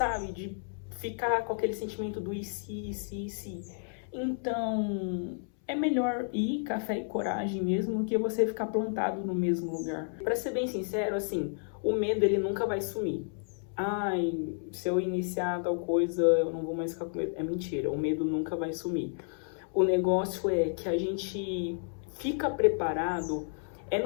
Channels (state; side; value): silent; right; 57 dB below the other